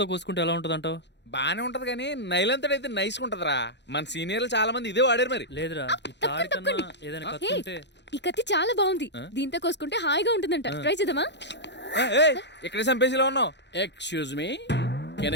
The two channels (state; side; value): late; right; 0.51 ms